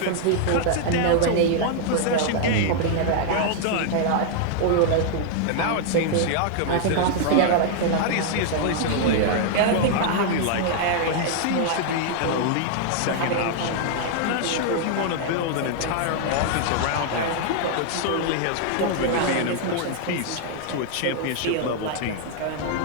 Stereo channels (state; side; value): different; both; correlation 0.00